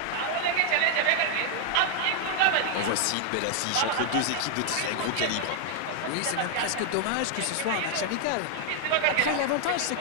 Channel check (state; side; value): different; both; correlation 0.00